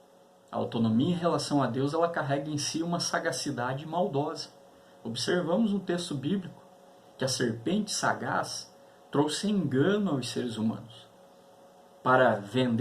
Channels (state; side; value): identical; both; correlation 1.00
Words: A autonomia em relação a Deus, ela carrega em si uma sagacidade maldosa. Observamos no texto bíblico que a serpente sagaz trouxe engano aos seres humanos para